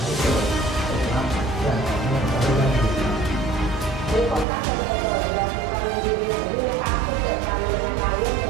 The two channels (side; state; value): left; drops out; at 4.5 s